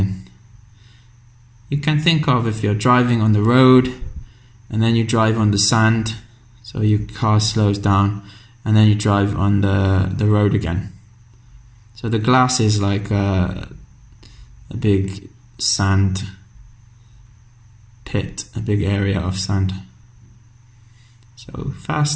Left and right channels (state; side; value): identical; both; correlation 1.00